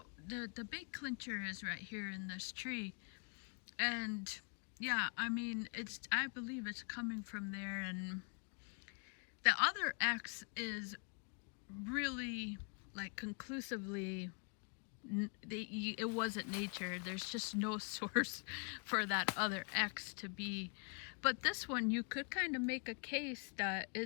the big clincher is right here in this tree. And yeah, I mean, I believe it's coming from there. And the other X is really like conclusively it wasn't nature. There's just no source for that other X to be. But this one, you could kind of make a case that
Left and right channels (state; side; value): quieter; right; 37.5 dB